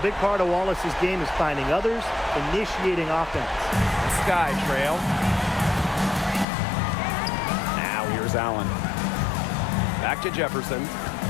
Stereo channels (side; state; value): right; drops out; at 6.5 s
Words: big part of Wallace's game is finding others, initiating offense. Sky trail. Now here's Allen. Back to Jefferson.